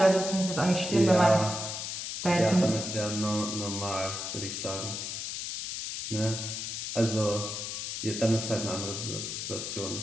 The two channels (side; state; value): left; noise; hiss, 5 dB below the sound